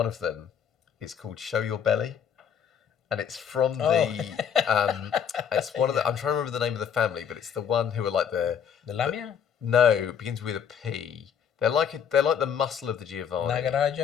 of them is called Show Your Belly, and it's from it's one of the, I'm trying to remember the name of the family, but it's the one who are like the Lamia? No, it begins with a P. They're like the muscle of the Giovanni.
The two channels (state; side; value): quieter; right; 7.9 dB